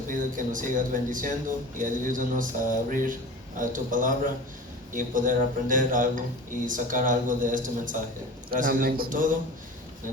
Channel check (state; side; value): normal; both; correlation 0.36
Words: pido que nos sigas bendiciendo y ayúdanos a abrir tu palabra y poder aprender algo y sacar algo de este mensaje. Gracias Dios por todo. En